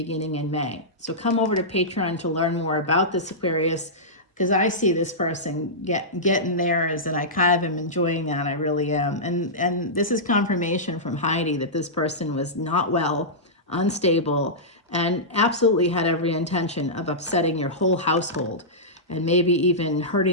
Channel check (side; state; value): both; normal; correlation -0.14